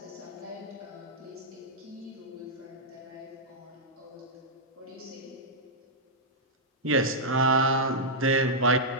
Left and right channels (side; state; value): both; normal; correlation -0.09